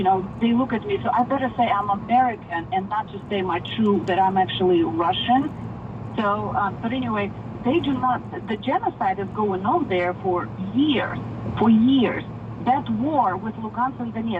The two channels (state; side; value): identical; both; correlation 1.00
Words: they look at me, so I better say I'm American and not just say that I'm actually Russian. So, but anyway, they do not, the genocide is going on there for years. That war with Lugansk and